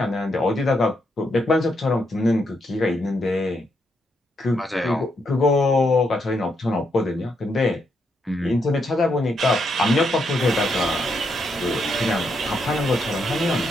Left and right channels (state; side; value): normal; both; correlation 0.79